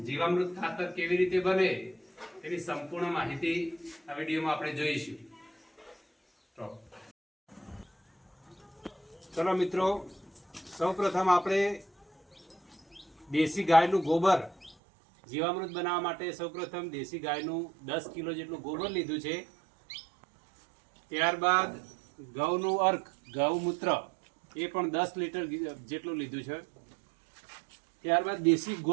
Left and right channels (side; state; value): left; drops out; at 14.8 s